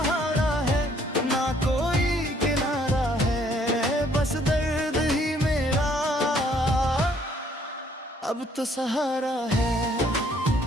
है ना कोई किनारा है, बस दर्द ही मेरा अब तो सहारा है।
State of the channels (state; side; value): normal; both; correlation 0.64